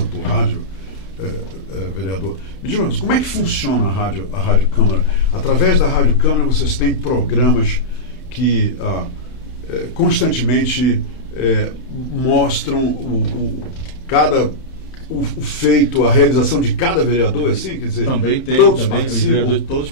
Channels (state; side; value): late; right; 31 ms